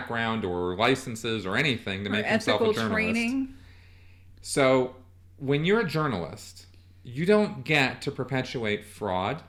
or licenses or anything to make himself a journalist. Training. So when you're a journalist, you don't get to perpetuate fraud,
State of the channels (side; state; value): both; identical; correlation 1.00